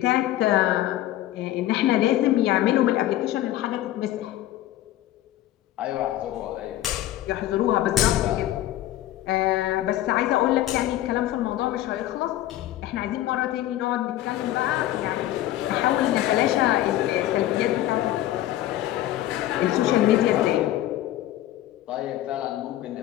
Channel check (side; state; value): right; quieter; 14.1 dB